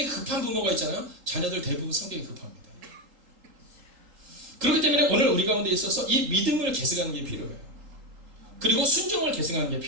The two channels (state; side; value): late; left; 3.8 ms